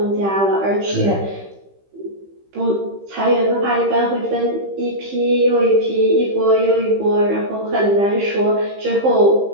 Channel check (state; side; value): late; left; 15 ms